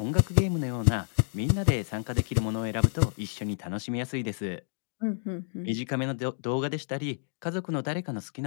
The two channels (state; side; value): silent; right; digital silence